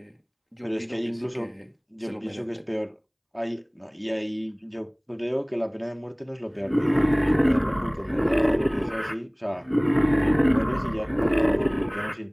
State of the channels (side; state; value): both; identical; correlation 1.00